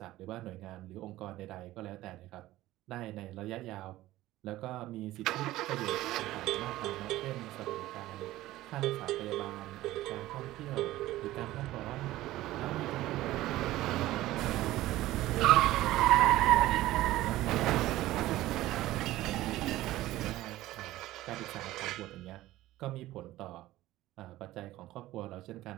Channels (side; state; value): left; quieter; 16.1 dB